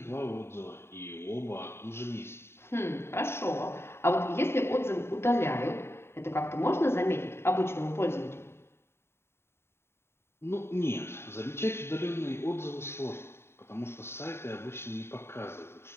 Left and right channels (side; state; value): right; late; 0.12 ms